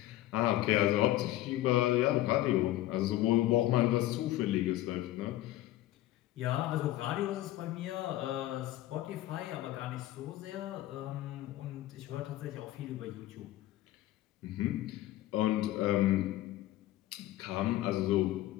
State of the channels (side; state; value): right; quieter; 15.0 dB